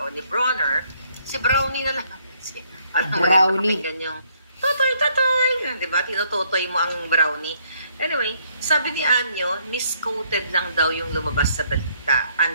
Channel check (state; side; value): inverted; both; correlation -0.68